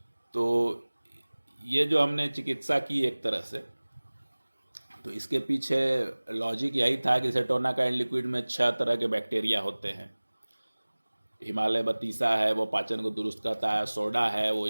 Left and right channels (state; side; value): inverted; both; correlation -1.00